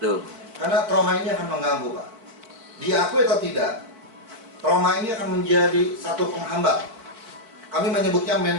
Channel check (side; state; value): left; late; 4.5 ms